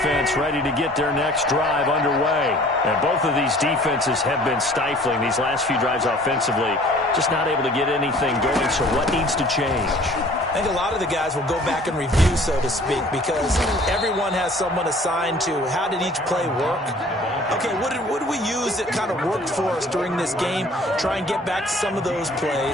ready to get their next drive underway. And both of these defenses have been stifling these last few drives offensively. Just not able to get anything going, so what needs to change? I think a lot of the guys will go back and review, so to speak, because everyone has someone assigned to how did each play work. Okay, what did we use that kind of worked for us during this game? Try and get back to some of those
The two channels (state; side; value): normal; both; correlation 0.51